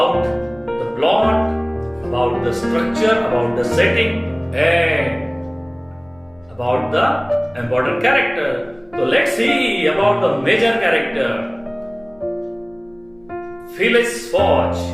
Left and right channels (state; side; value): noise; left; rumble, 30 dB below the sound